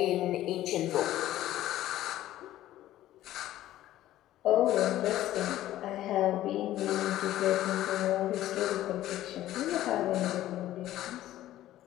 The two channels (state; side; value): quieter; right; 14.0 dB